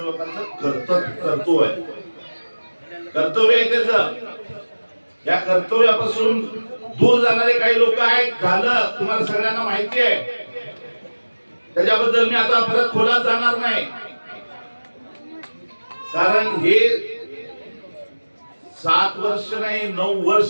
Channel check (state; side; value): inverted; both; correlation -1.00